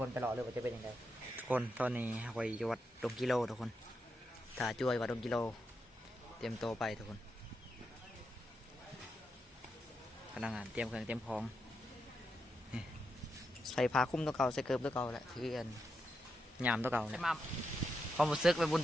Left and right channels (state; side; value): normal; both; correlation 0.85